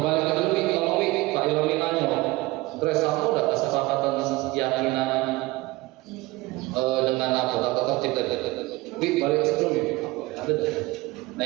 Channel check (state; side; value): quieter; left; 20.8 dB